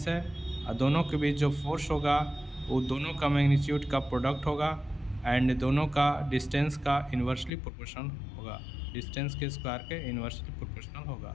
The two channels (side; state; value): right; drops out; at 7.5 s